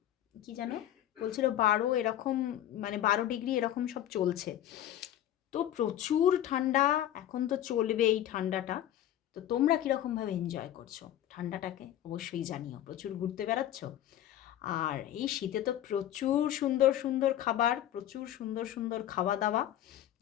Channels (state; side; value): quieter; right; 12.0 dB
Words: কি যেন বলছিল 12 এরকম, মানে 12 ডিগ্রি এরকম সব চলছে। তো প্রচুর ঠান্ডা, এখন তো চলবে এই ঠান্ডাটা। তো তোমরা কীরকমভাবে এনজয় করছো ঠান্ডাটাকে অবশ্যই জানিও। প্রচুর ঘুরতে বেড়াচ্ছ? আর এই শীতে তো প্রচুর সুন্দর সুন্দর খাবার, প্রচুর সুন্দর সুন্দর খাওয়া দাওয়া।